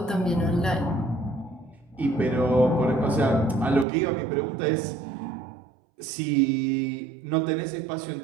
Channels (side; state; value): left; drops out; at 3.9 s